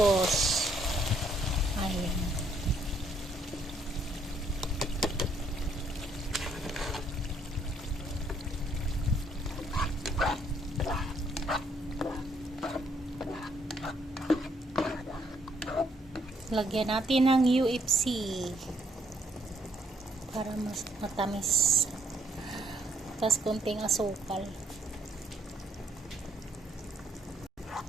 Ayan. Lagyan natin ng UFC para mas matamis. Tapos konting asukal.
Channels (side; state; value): both; normal; correlation 0.70